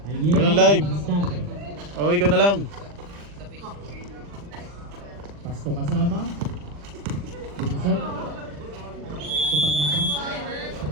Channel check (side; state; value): left; late; 40 ms